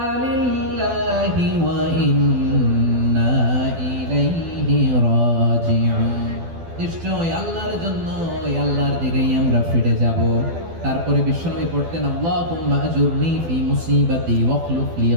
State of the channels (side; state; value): left; late; 12 ms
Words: লিল্লাহি ওয়া ইন্না ইলাইহি রাজিউন। নিশ্চয় আল্লাহর জন্য, ওই আল্লাহর দিকেই আমরা ফিরে যাব। তারপরে বিশ্বনবী পড়তেন আল্লাহুম্মা আজুরনি ফি মুসিবাতি ওয়াখলুফ লি